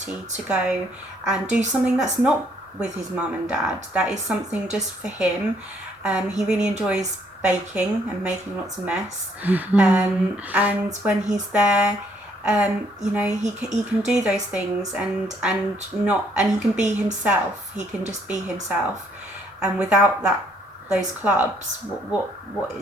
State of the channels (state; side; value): normal; both; correlation 0.67